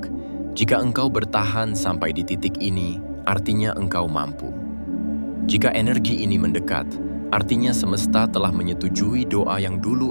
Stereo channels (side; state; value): both; inverted; correlation -1.00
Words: Jika engkau bertahan sampai di titik ini, artinya engkau mampu. Jika energi ini mendekat, Artinya semesta telah menyetujui doa yang